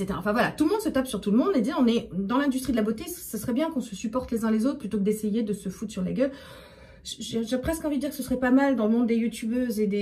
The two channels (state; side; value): identical; both; correlation 1.00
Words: Enfin voilà, tout le monde se tape sur tout le monde et dit, on est dans l'industrie de la beauté, ce serait bien qu'on se supporte les uns les autres plutôt que d'essayer de se foutre sur la gueule. J'ai presque envie de dire que ce serait pas mal dans le monde des youtubeuses et